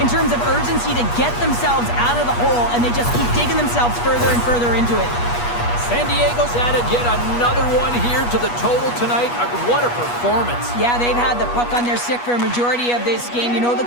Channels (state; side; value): late; right; 8.3 ms